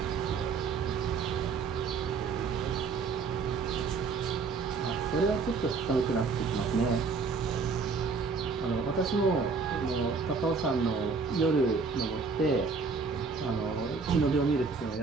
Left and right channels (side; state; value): left; quieter; 4.8 dB